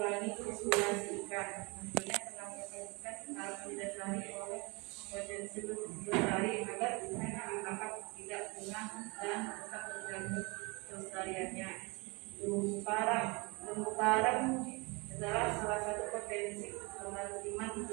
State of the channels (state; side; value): quieter; left; 28.1 dB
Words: populasi ikan. Tentunya penangkapan ikan harus didasari oleh potensi lestari agar ikan yang ditangkap tidak punah dan tetap terjaga kelestariannya. Terumbu karang adalah salah satu potensi kemaritiman